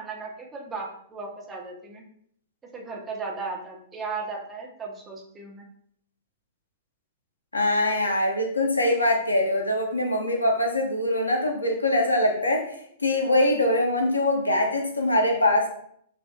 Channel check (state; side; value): inverted; both; correlation -0.59